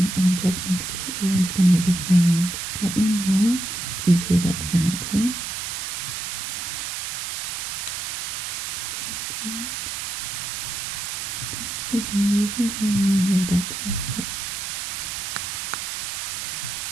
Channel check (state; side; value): noise; right; hiss, 4 dB below the sound